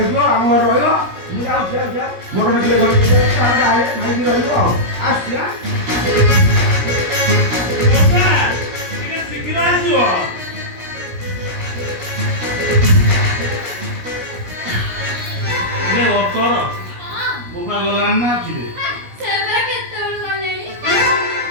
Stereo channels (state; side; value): late; left; 17 ms